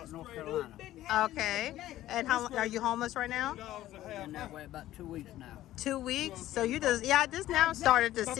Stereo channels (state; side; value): quieter; right; 14.3 dB